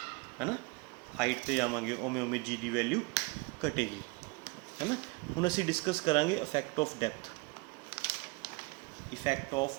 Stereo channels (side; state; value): left; quieter; 27.7 dB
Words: है ना, हाइट पर जावांगे उमें उमें जी की वैल्यू घटेगी, है ना। हम असी डिस्कस करांगे effect of depth, effect of